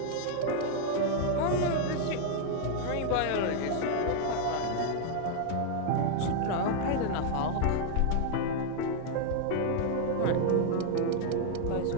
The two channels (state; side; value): different; both; correlation 0.00